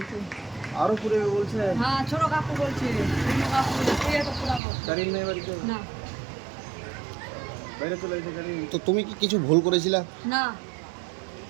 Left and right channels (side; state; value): left; drops out; at 4.6 s